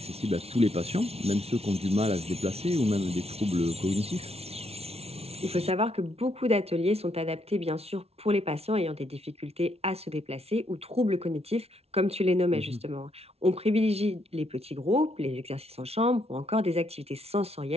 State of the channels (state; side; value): late; left; 0.30 ms